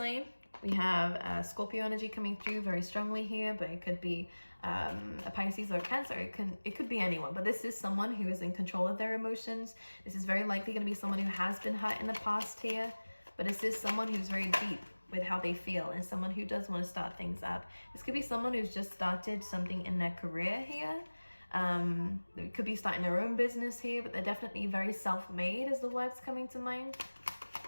We have Scorpio energy coming through very strongly here, but it could be a Pisces or a Cancer. It could be anyone, but this is someone who is in control of their emotions. This is very likely going to be someone who has been hurt in the past here, but this is someone who's very deep with how they feel and someone who does want to start things up. This could be someone who's just started something in their career here. They could be starting their own business here, but they're definitely very self-made is the words coming to mind.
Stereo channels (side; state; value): both; inverted; correlation -1.00